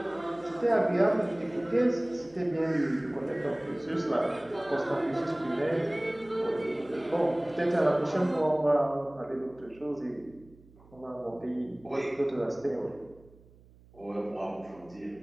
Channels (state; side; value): noise; right; hum, 26 dB below the sound